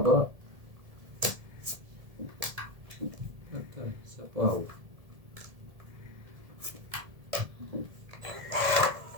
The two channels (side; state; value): left; late; 1.7 ms